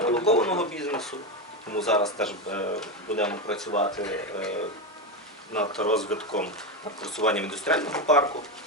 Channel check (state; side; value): normal; both; correlation 0.13